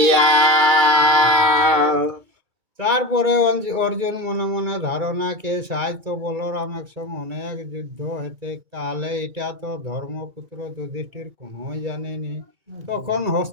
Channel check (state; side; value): late; left; 2.3 ms